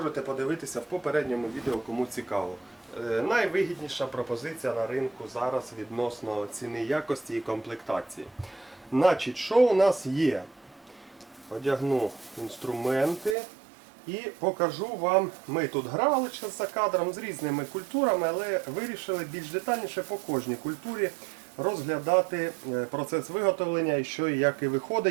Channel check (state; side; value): drops out; left; at 13.4 s